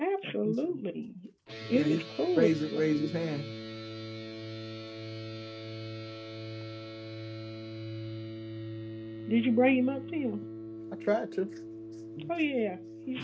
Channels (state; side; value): identical; both; correlation 1.00